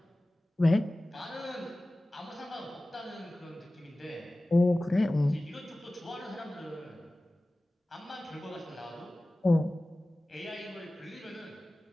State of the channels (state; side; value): normal; both; correlation 0.97